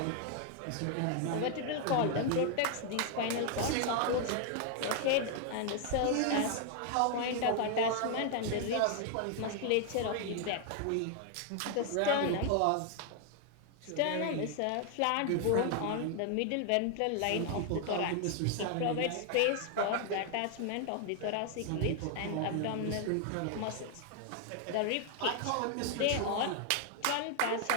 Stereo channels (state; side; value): different; both; correlation 0.00